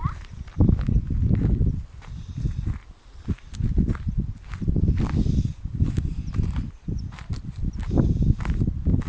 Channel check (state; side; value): identical; both; correlation 1.00